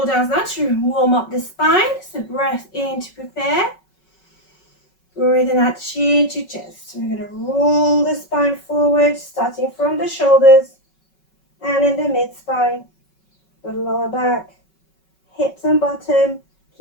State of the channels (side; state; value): right; late; 5.3 ms